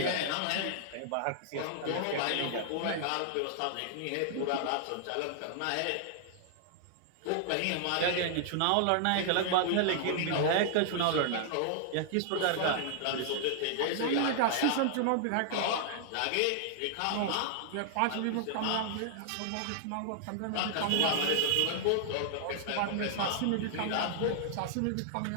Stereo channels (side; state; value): both; different; correlation -0.01